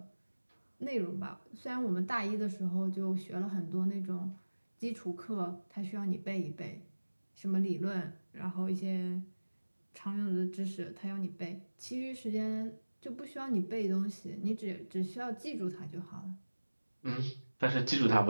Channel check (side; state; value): both; inverted; correlation -1.00